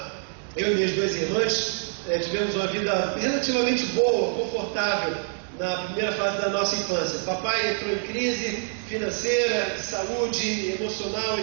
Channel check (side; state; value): left; silent; 61 dB below the other